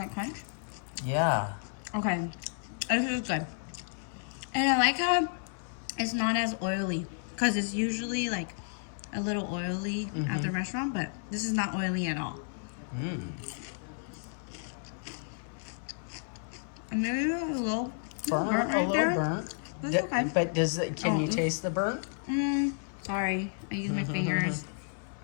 crunch? Yeah. Okay, this is good. And I like how it's not as oily, because it's usually like a little oily at the restaurant, but this is not oily at all. And maybe a little burnt right there. Burnt. That's okay. But can you taste the burnt? Sorry, I use my fingers.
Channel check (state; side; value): silent; right; 57 dB below the other